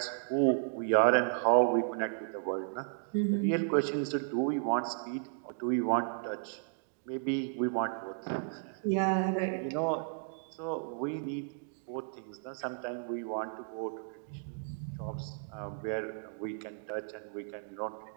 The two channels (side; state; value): left; silent; digital silence